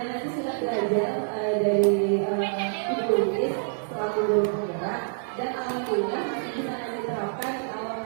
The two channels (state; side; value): silent; left; digital silence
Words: nanti sudah belajar dari Ibu Luis selaku guru penggerak dan alhamdulillah masih bisa diterapkan kalau